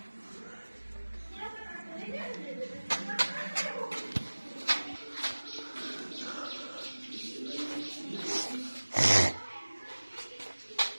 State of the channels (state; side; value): inverted; both; correlation -1.00